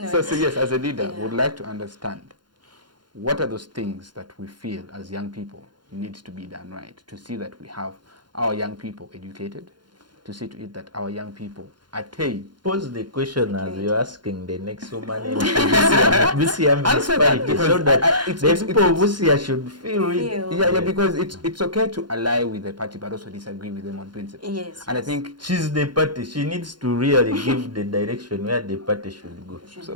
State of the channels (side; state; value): left; late; 0.71 ms